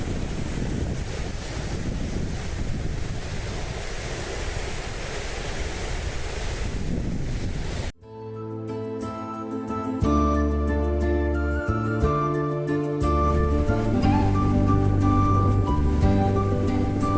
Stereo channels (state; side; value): identical; both; correlation 1.00